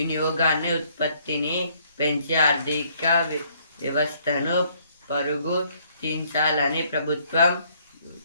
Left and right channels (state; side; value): inverted; both; correlation -0.66